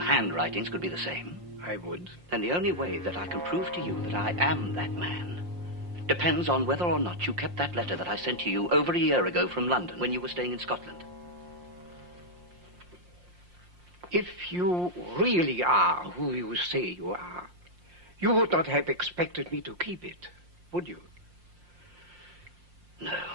could be the same? I would. Then the only way that I can prove to you that I am that man depends on whether or not you kept that letter that I sent to you over a year ago from London when you were staying in Scotland. If you really are who you say you are, you would not have expected me to keep it, would you? No.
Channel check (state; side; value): late; left; 5.7 ms